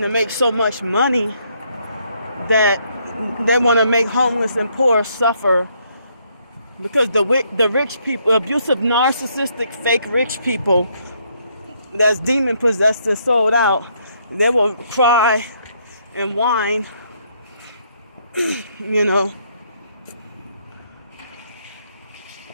to make so much money that they want to make homeless and poor suffer because the rich people, abusive, narcissistic, fake rich people that's demon possessed and sold out, they will cry and whine, you know.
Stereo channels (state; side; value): inverted; both; correlation -0.71